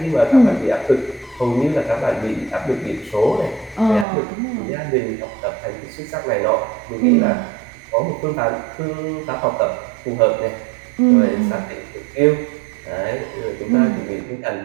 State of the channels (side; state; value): left; drops out; at 4.0 s